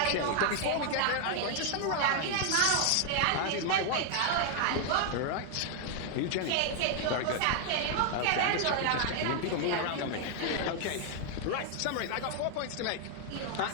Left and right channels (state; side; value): different; both; correlation 0.00